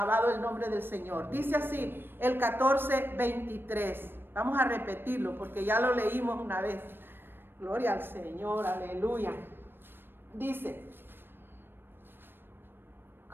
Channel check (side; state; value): left; late; 0.099 ms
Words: el nombre del Señor. Dice así, el 14, 23. Vamos a repetirlo porque ya lo leímos una vez. Gloria al Señor, aleluya. Dice,